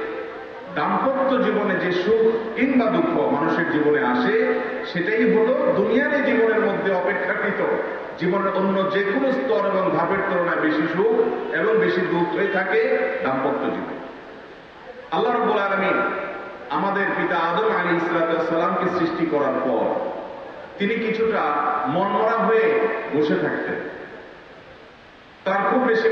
দাম্পত্য জীবনে যে সুখ কিংবা দুঃখ মানুষের জীবনে আসে, সেটাই হলো দুনিয়ার এই জীবনের মধ্যে অপেক্ষাকৃত জীবনের অন্য যে কোনো স্তর এবং ধাপের তুলনায় বেশি সুখ এবং বেশি দুঃখ হয়ে থাকে দাম্পত্য জীবন। আল্লাহ রাব্বুল আলামিন আমাদের পিতা আদম আলাইহিস সালামকে সৃষ্টি করার পর তিনি কিছুটা মনমরা হয়ে বসে থাকতেন। তার খুব বেশি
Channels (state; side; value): identical; both; correlation 1.00